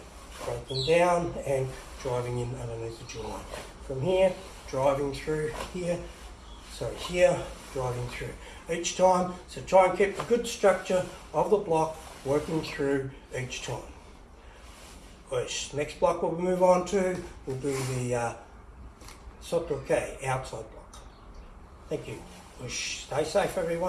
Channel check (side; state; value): both; identical; correlation 1.00